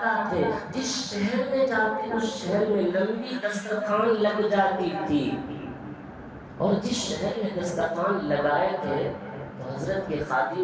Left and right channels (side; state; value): both; identical; correlation 1.00